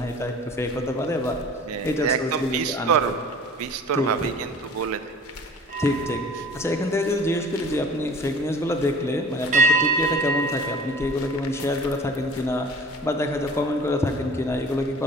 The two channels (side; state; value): both; normal; correlation 0.45